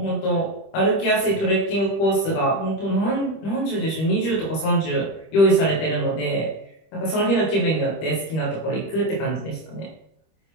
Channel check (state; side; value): late; right; 25 ms